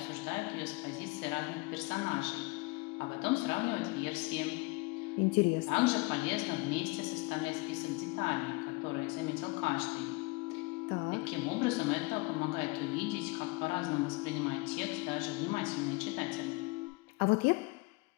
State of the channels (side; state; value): right; quieter; 25.7 dB